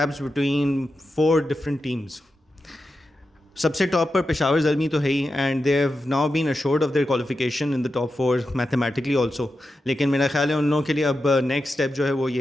between 4 different teams. سب سے ٹاپ پر پشاور زلمی تو ہے ہی، and they have now been assured of their qualification in the top 4 mathematically also. لیکن میرا خیال ہے ان لوگوں کے لیے اب نیکسٹ اسٹیپ جو ہے وہ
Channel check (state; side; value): normal; both; correlation 0.90